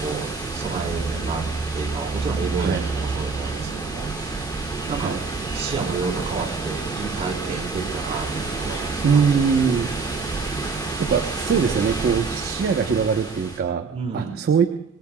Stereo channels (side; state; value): left; quieter; 4.9 dB